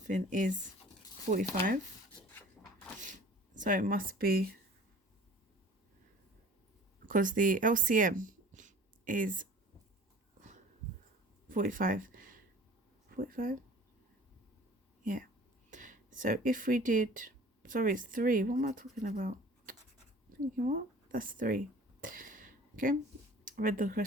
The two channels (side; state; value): both; normal; correlation 0.46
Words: is 45. So it must be, because the LCM is 45. 45? Yeah. So if we did, sorry, it's 3. What am I talking about? Thinking what? That's 3. Okay. I read the